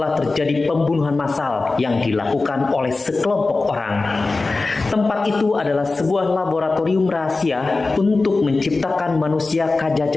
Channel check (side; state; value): right; quieter; 3.6 dB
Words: terjadi pembunuhan massal yang dilakukan oleh sekelompok orang. Tempat itu adalah sebuah laboratorium rahasia untuk menciptakan manusia